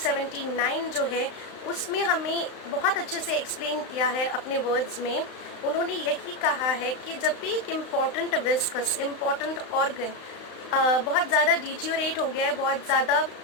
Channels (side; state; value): right; late; 35 ms